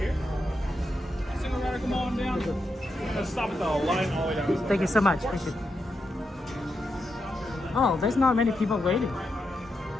Single rider, come on down. Let's stop at the line all the way down. Thank you so much. Appreciate it. Oh, there's not many people waiting.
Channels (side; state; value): both; normal; correlation 0.85